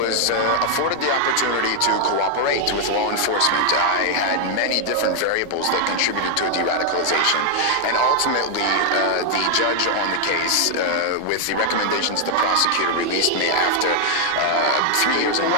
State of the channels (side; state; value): both; different; correlation 0.00